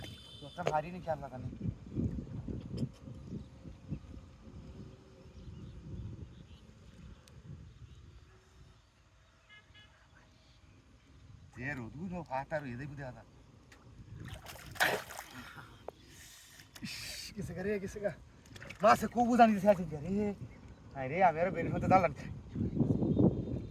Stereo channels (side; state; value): both; identical; correlation 1.00